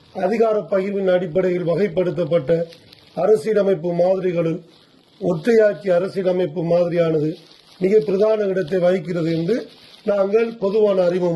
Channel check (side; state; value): both; identical; correlation 1.00